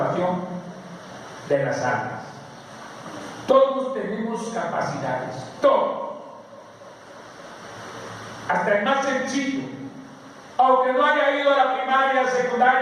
de las almas. Todos tenemos capacidades, todos, hasta el más sencillo, aunque no haya ido a la primaria,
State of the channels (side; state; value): both; identical; correlation 1.00